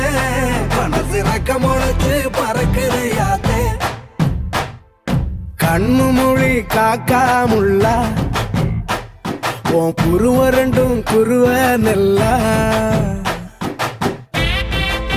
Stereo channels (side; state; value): both; identical; correlation 1.00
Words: மனசு ரக்க முளைச்சு பறக்குதையாத்தே கண்ணு மொழி காக்காமுள்ள உன் குருவரண்டும் குருவ நெல்லா